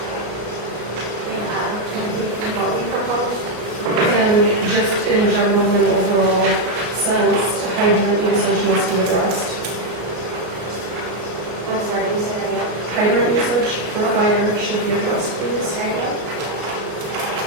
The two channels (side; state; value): left; late; 33 ms